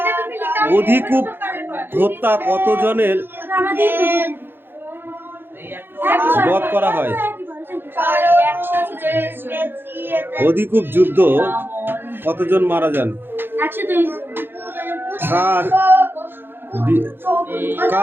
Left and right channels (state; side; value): late; left; 0.10 ms